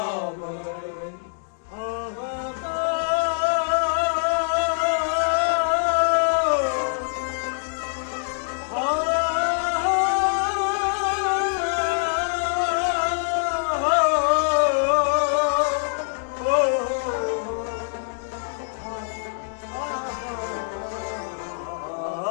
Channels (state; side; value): silent; right; digital silence